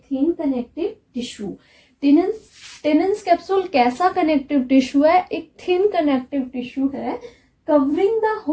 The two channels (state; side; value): identical; both; correlation 1.00